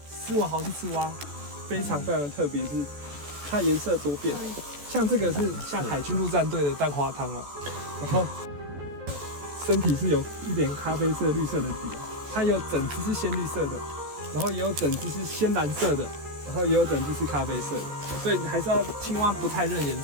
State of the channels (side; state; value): left; late; 14 ms